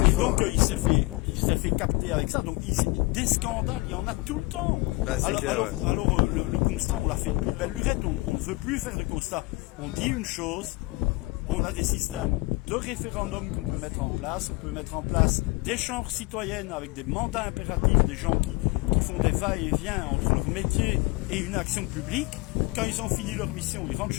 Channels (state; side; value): quieter; right; 24.1 dB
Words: donc il s'est fait capter avec ça. Donc des scandales, il y en a tout le temps. Bah, alors le constat, on l'a fait de belle lurette, on ne veut plus faire de constat. On dit une chose, on a des systèmes de référendum qu'on peut mettre en place, on peut mettre en place des chambres citoyennes avec des mandats impératifs, des gens qui font des va-et-vient entre leur métier et une action publique. Quand ils ont fini leur mission, ils rentrent